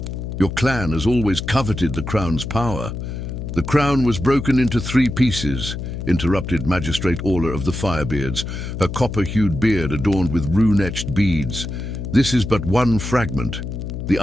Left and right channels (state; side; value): noise; left; hum, 6 dB below the sound